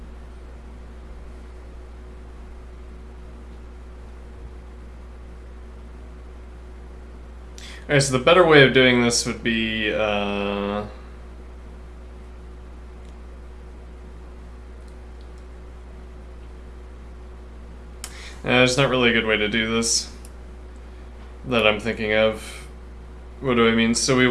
alright, so the better way of doing this would be there's not really a good way to do this that I'm thinking of. What do I mean? So we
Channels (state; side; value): identical; both; correlation 1.00